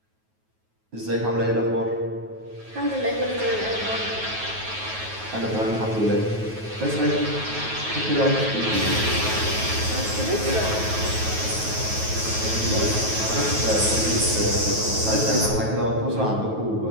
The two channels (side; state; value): left; late; 9.3 ms